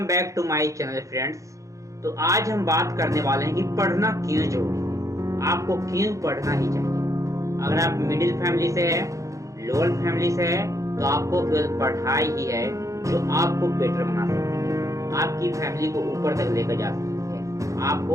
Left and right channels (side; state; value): left; late; 0.15 ms